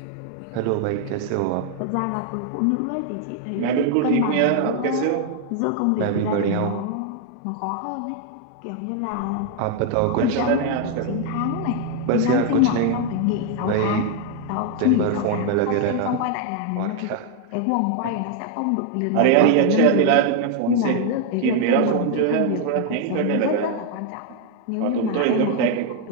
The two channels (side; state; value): both; different; correlation 0.00